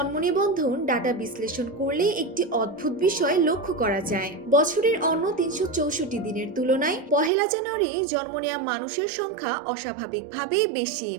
নিবন্ধন ডাটা বিশ্লেষণ করলে একটি অদ্ভুত বিষয় লক্ষ্য করা যায়। বছরের অন্য ৩৬৪ দিনের তুলনায় পহেলা জানুয়ারি জন্ম নেওয়া মানুষের সংখ্যা অস্বাভাবিকভাবে বেশি।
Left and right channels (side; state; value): left; drops out; at 7.3 s